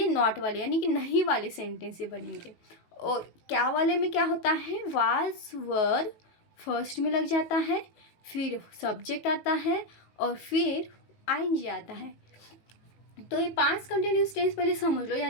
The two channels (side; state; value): right; late; 18 ms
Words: नॉट वाले यानी कि नहीं वाले सेंटेंस ये बनेंगे। और क्या वाले में क्या होता है, वाज वर फर्स्ट में लग जाता है, फिर सब्जेक्ट आता है और फिर आईएनजी आता है। तो ये पास्ट कंटिन्यूस टेंस पहले समझ लो,